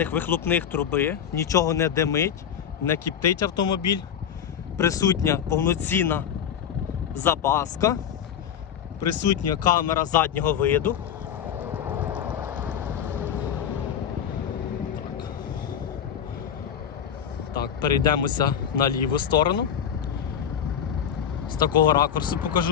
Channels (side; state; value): right; quieter; 8.7 dB